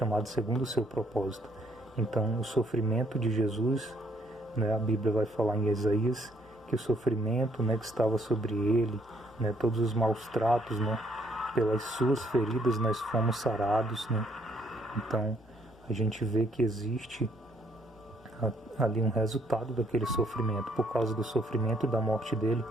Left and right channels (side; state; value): both; normal; correlation 0.68